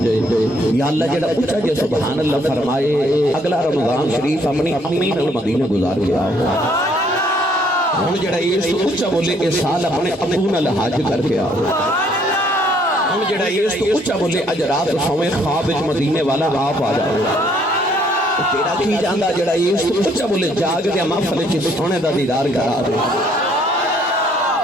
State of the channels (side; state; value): both; normal; correlation 0.65